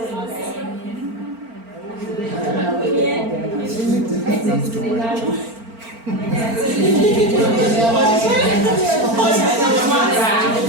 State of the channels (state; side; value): late; left; 4.4 ms